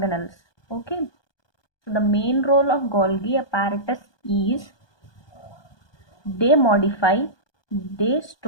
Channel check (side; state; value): right; late; 1.2 ms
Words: Okay. So the main role of Golgi apparatus is they modify, they